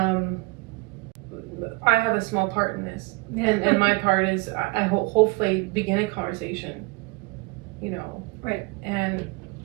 I have a small part in this, and my part is I hopefully begin a conversation, you know, right, and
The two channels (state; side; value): quieter; left; 26.8 dB